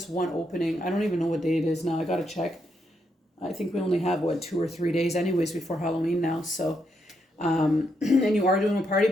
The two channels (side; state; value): both; normal; correlation 0.79